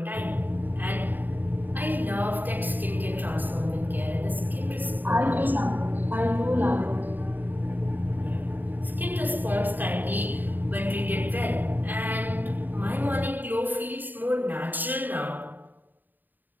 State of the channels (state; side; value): late; left; 0.089 ms